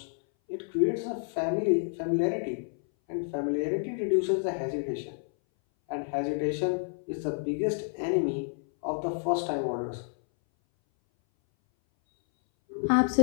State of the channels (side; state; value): right; silent; 58 dB below the other